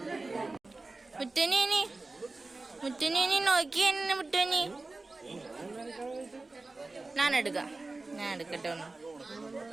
മുറ്റനി മുറ്റനി നോക്കി എന്നെ മുറ്റനി. ഞാൻ എടുക്കട്ടെ ഒന്ന്.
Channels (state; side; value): quieter; left; 3.3 dB